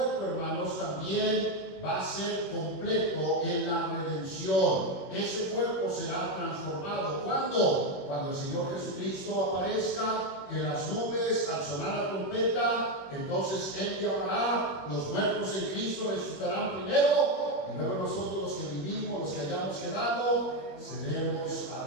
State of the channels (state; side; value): late; right; 21 ms